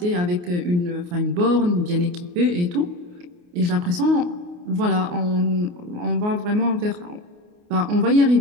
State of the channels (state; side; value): late; left; 28 ms